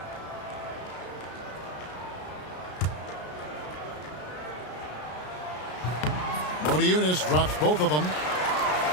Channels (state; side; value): late; right; 33 ms